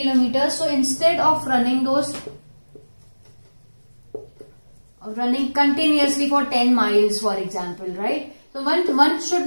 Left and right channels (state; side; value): inverted; both; correlation -1.00